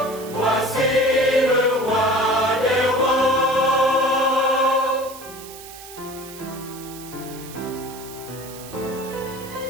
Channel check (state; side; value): noise; right; hiss, 16 dB below the sound